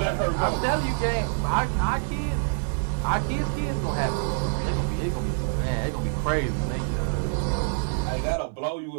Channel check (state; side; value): silent; left; digital silence